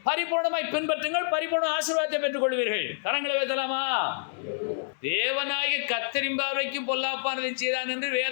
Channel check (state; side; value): silent; right; digital silence